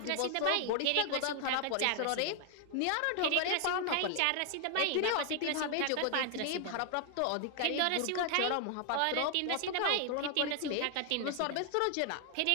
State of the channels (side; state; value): both; different; correlation 0.00